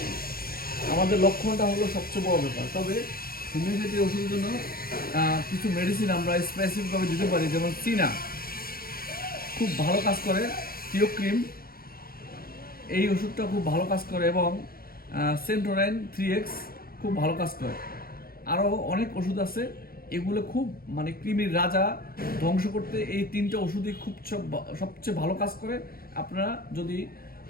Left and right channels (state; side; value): late; right; 0.43 ms